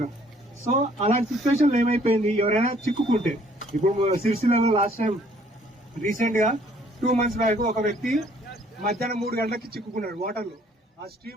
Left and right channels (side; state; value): both; normal; correlation 0.61